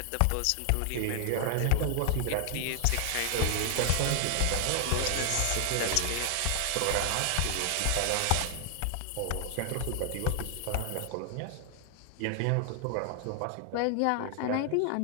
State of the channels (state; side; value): different; both; correlation 0.00